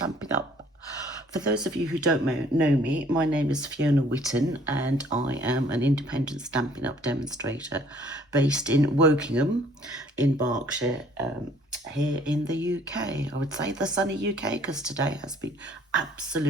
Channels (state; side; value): normal; both; correlation 0.58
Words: Up. For those of you who don't know me, my name is Fiona Whitten and I am an independent Stampin' Up demonstrator based in Wokingham in Berkshire, here in the UK. I would say the sunny UK because today has been